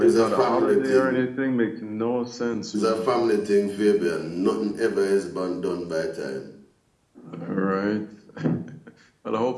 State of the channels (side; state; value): both; identical; correlation 1.00